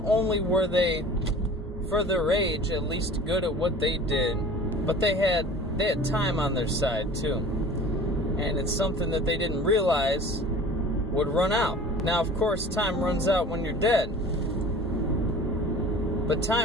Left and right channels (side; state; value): both; normal; correlation 0.42